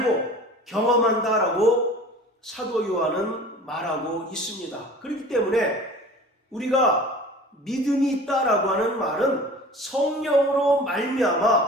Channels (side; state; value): both; normal; correlation 0.42